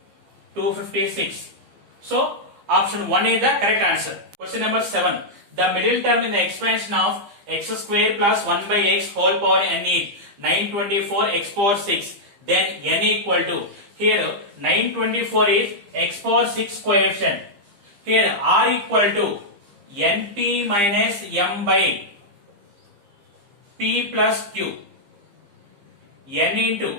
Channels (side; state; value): left; late; 15 ms